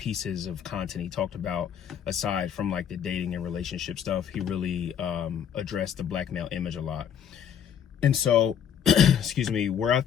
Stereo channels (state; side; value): quieter; right; 8.6 dB